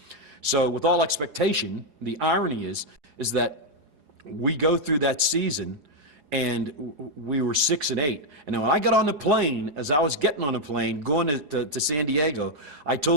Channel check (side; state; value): left; late; 4.8 ms